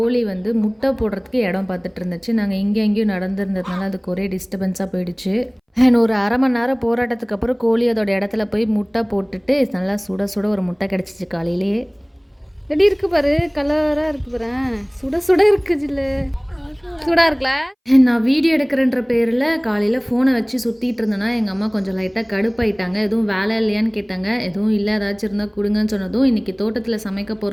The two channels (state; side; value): identical; both; correlation 1.00